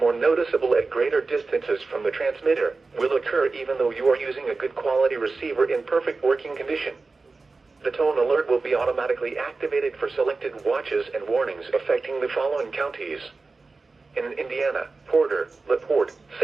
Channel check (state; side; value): quieter; left; 3.9 dB